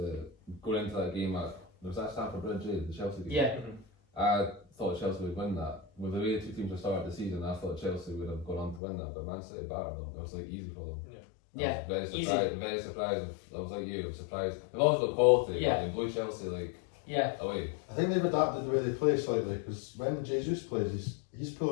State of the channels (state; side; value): drops out; right; at 8.8 s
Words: going into that game was that Stamford Bridge, the Chelsea game? Yeah. I thought Chelsea would win that. With the way the two teams have started the season, I thought Chelsea would have gone on to win that, but Man City battered them. It was like easy for them. Yeah. Very surprised. I was like you, I was surprised. They've always got quality, but they blew Chelsea away. I think they've adapted the way they play slightly because when Jesus plays, he's